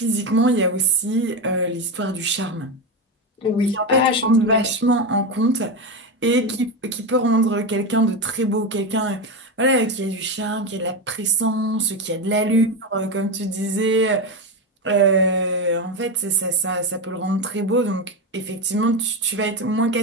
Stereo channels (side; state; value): both; normal; correlation 0.15